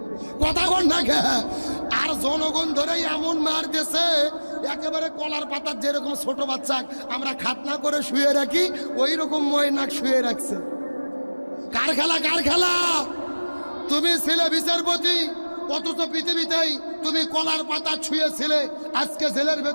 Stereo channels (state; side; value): inverted; both; correlation -1.00